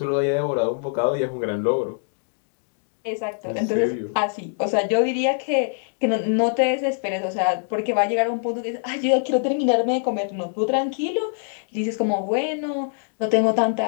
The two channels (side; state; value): right; silent; digital silence